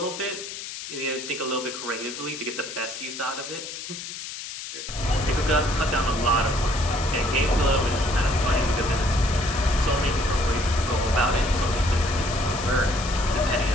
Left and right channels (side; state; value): left; noise; hiss, 9 dB below the sound